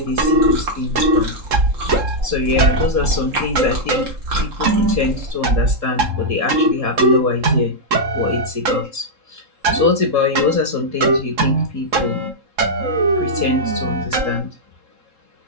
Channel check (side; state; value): left; late; 3.7 ms